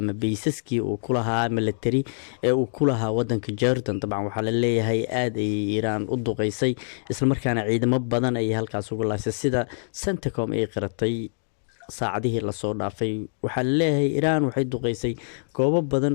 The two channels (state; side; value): silent; right; digital silence